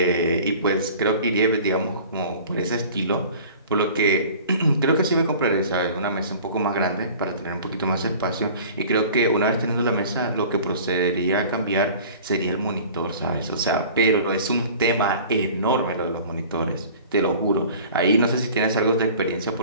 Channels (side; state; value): both; inverted; correlation -0.44